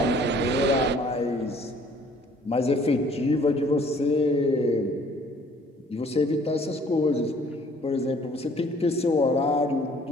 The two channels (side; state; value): both; normal; correlation 0.57